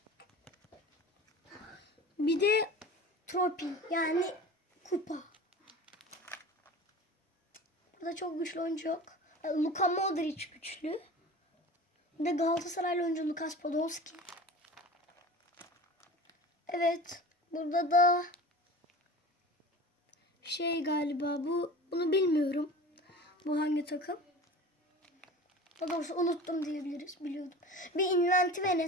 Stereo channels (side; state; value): both; normal; correlation 0.37